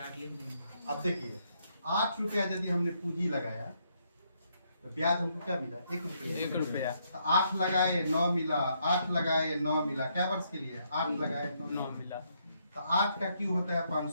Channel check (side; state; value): both; inverted; correlation -0.74